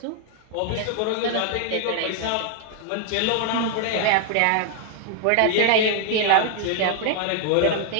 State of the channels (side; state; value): both; different; correlation 0.00